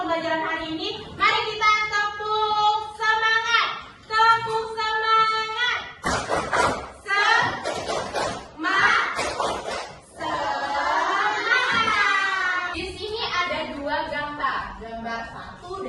hari ini, mari kita tepuk semangat. Tepuk semangat. Semangat. Di sini ada dua gambar, gambar 1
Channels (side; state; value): both; identical; correlation 1.00